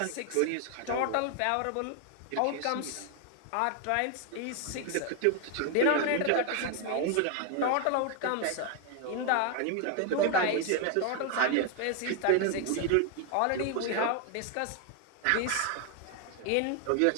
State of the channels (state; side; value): different; both; correlation 0.00